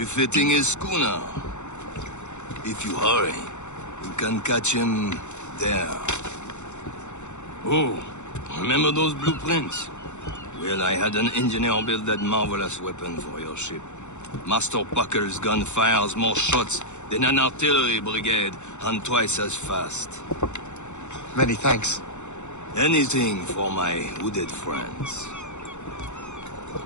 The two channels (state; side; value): late; right; 0.83 ms